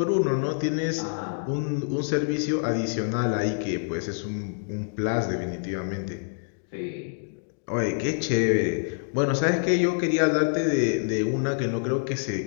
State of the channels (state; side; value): silent; right; digital silence